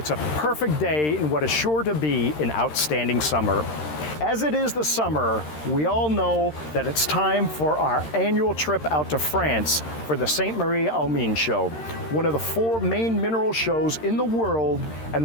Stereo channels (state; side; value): late; right; 13 ms